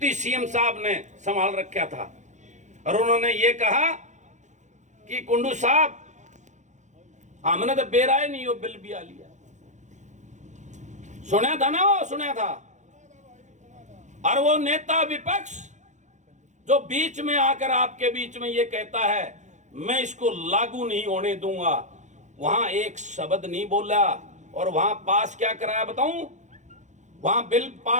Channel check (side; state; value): left; late; 0.35 ms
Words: सीएम साहब ने संभाल रखा था और उन्होंने ये कहा कि कुंडू साहब हमने तो बेराए नहीं हो बिल भी आ लिया। सुना था ना, वो सुना था। और वो नेता विपक्ष जो बीच में आकर आपके बीच में ये कहता है मैं इसको लागू नहीं होने दूंगा, वहां एक शब्द नहीं बोला। और वहां पास क्या कराया बताऊं, वहां बिल